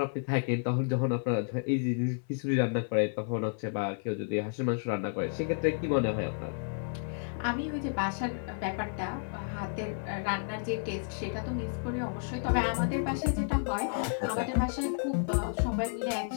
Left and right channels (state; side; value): silent; right; 57 dB below the other